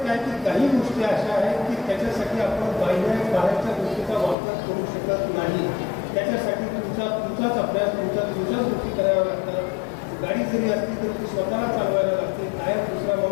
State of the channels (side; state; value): right; drops out; at 4.4 s